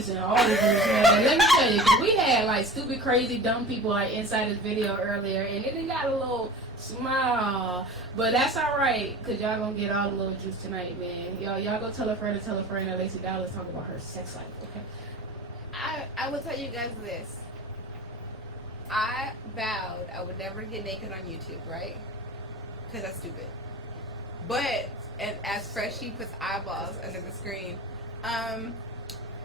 all this news, man. Let me tell you, because we had like stupid, crazy, dumb people like inside this video earlier, and it got a little small, but that's all right, because y'all gonna get all the little juice tonight, man. Y'all go tell a friend that Lacey Dallas talking about her sex life, okay? I will tell you guys this. I vowed I would never get naked on YouTube, right? Because that's stupid. But and as Freshie puts eyeballs under the screen, I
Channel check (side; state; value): both; normal; correlation 0.36